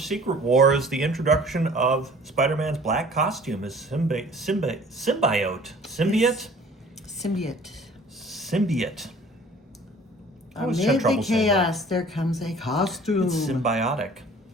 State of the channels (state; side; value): normal; both; correlation 0.50